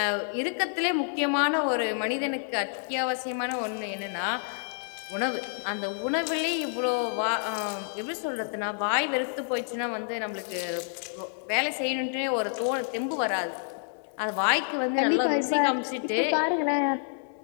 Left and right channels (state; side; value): silent; right; digital silence